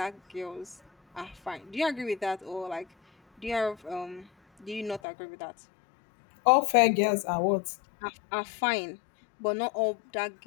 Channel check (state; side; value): drops out; right; at 5.0 s